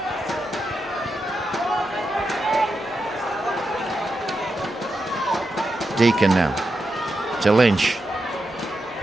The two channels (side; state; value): both; normal; correlation 0.87